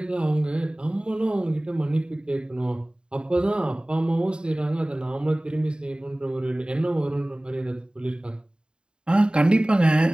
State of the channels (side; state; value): left; late; 0.050 ms